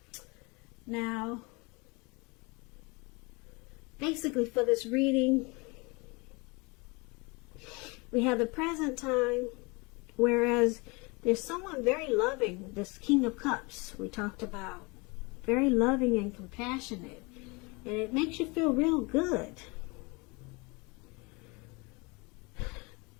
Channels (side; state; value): right; quieter; 27.7 dB